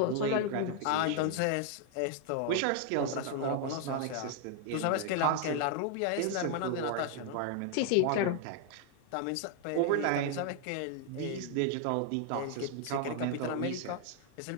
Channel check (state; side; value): different; both; correlation 0.00